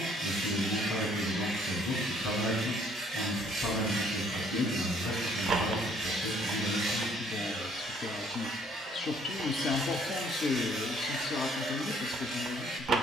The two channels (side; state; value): both; normal; correlation 0.62